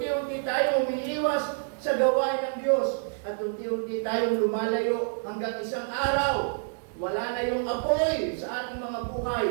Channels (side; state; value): left; silent; digital silence